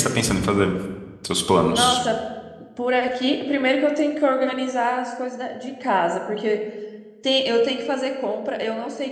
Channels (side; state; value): both; identical; correlation 1.00